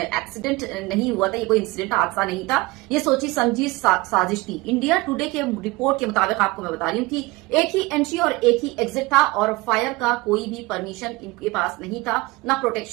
नहीं हुआ था, ये कोई इंसिडेंट हादसा नहीं था, ये सोची समझी साजिश थी। इंडिया टुडे के रिपोर्ट के मुताबिक आपको मैं बता रही हूँ कि एक ही एंट्री और एक ही एग्जिट था और फायर का कोई भी परमिशन इनके पास नहीं था, ना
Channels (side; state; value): left; quieter; 22.3 dB